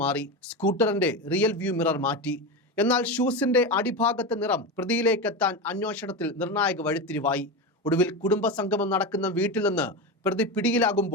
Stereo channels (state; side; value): normal; both; correlation 0.19